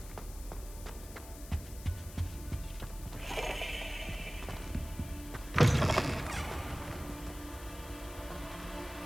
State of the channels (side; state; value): left; noise; hiss, 15 dB below the sound